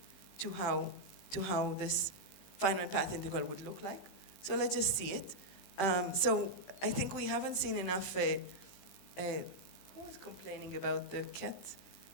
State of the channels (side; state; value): right; late; 16 ms